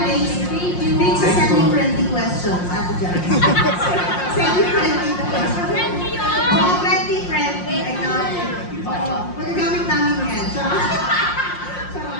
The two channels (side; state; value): right; late; 5.6 ms